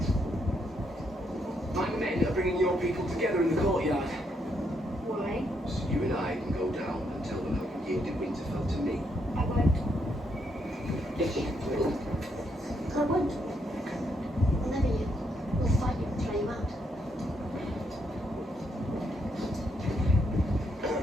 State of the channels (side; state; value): both; normal; correlation 0.76